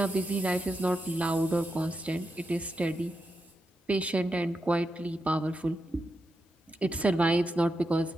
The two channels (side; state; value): both; normal; correlation 0.87